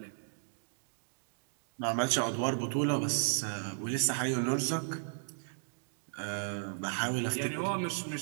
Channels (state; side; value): silent; left; digital silence